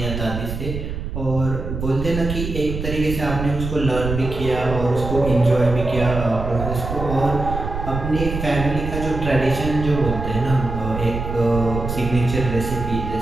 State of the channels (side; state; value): right; noise; rumble, 5 dB below the sound